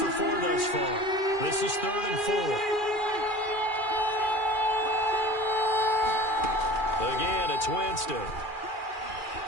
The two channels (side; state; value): right; late; 2.4 ms